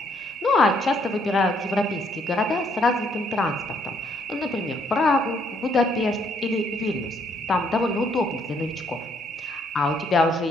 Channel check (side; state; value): both; normal; correlation 0.69